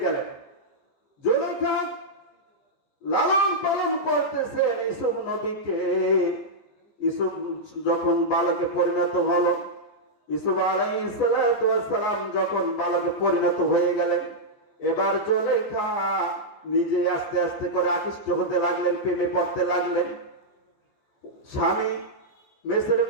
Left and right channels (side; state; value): right; late; 15 ms